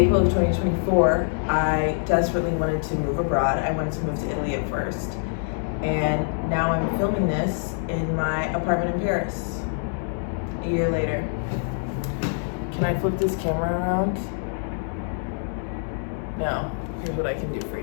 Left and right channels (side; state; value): right; silent; digital silence